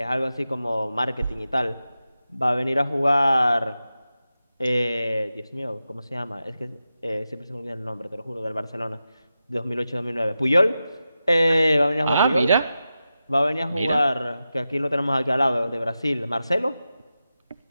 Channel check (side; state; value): both; inverted; correlation -0.92